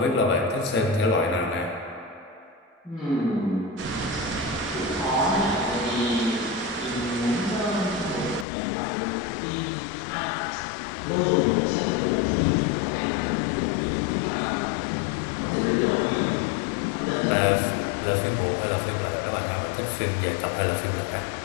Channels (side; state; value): right; drops out; at 8.5 s